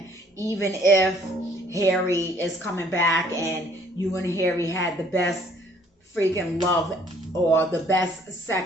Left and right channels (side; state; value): both; normal; correlation 0.60